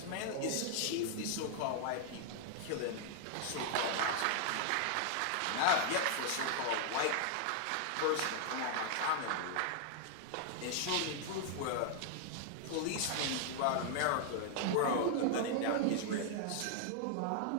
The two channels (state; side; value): different; both; correlation 0.00